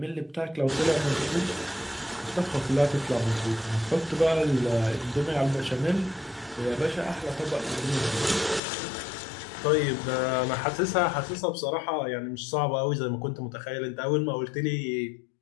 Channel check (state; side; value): drops out; right; at 8.6 s